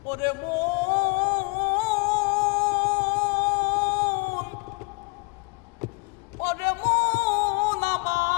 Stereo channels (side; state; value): right; quieter; 30.1 dB